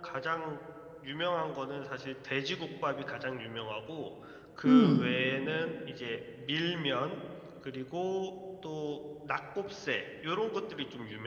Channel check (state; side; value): identical; both; correlation 1.00